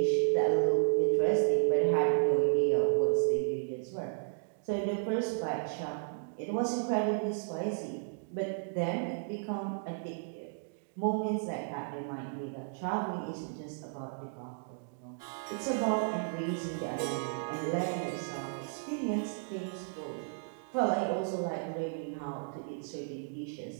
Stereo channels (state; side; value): silent; left; digital silence